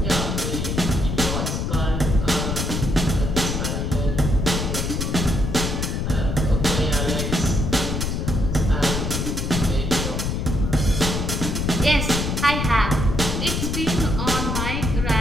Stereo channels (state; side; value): noise; left; rumble, 1 dB below the sound